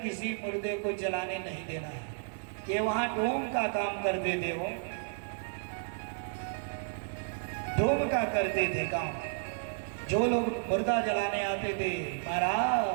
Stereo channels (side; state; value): left; silent; digital silence